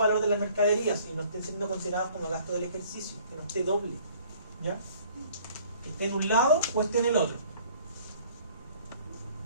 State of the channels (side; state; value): both; inverted; correlation -0.55